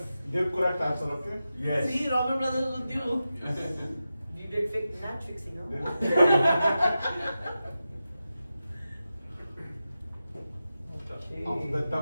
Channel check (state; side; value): inverted; both; correlation -0.92